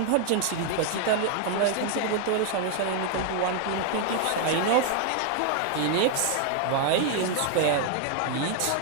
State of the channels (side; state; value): both; different; correlation 0.00